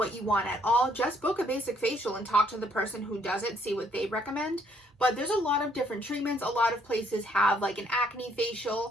you want at all, just book a basic facial and talk to the person who does it, see what they recommend. But there's a lot of different treatments. A lot of places have like an acne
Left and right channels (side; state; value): both; normal; correlation 0.67